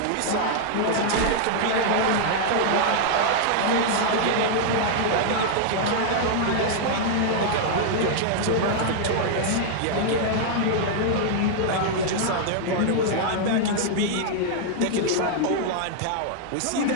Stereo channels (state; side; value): different; both; correlation -0.01